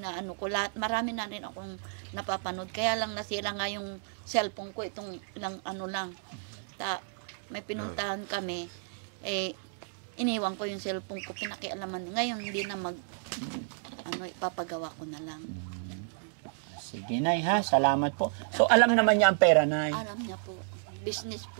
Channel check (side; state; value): left; silent; digital silence